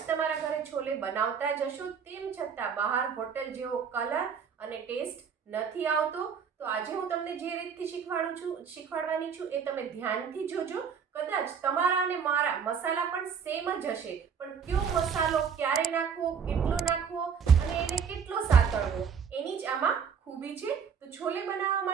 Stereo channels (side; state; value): left; quieter; 6.7 dB